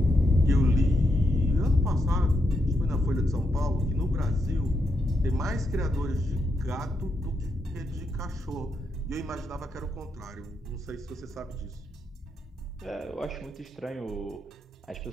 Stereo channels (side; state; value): both; normal; correlation 0.81